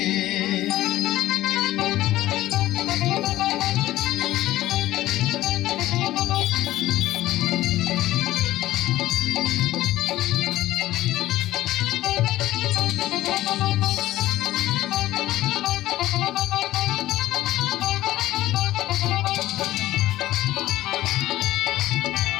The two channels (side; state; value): right; quieter; 15.4 dB